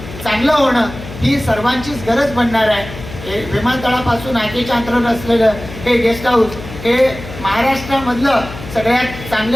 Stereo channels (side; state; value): left; noise; hum, 13 dB below the sound